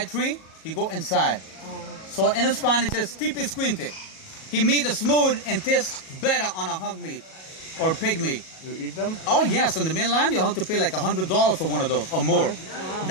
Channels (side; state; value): right; late; 37 ms